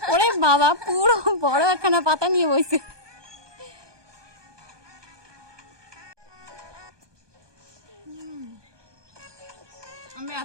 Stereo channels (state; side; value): late; left; 1.2 ms